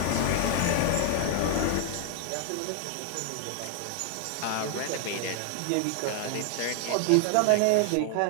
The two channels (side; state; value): both; different; correlation 0.00